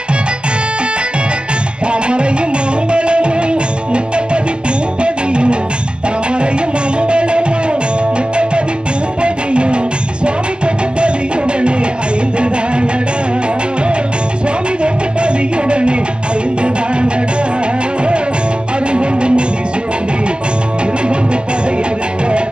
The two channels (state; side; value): late; left; 0.053 ms